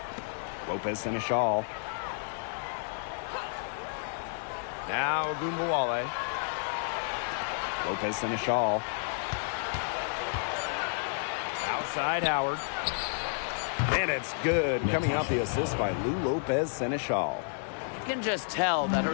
Lopez Seneschal. Now Ogunbowale. Lopez Seneschal. Outside Howard. And it's good. Coming off the assist by Lou Lopez Seneschal. You can just tell that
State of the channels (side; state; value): right; silent; digital silence